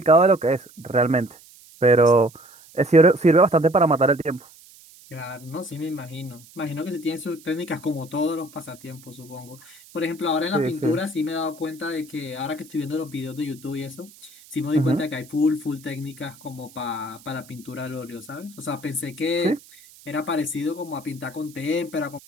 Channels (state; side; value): noise; right; hiss, 23 dB below the sound